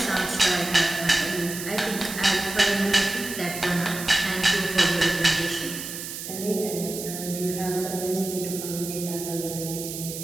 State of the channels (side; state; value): right; noise; hiss, 8 dB below the sound